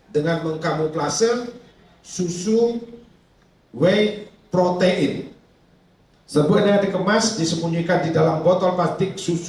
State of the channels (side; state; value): both; identical; correlation 1.00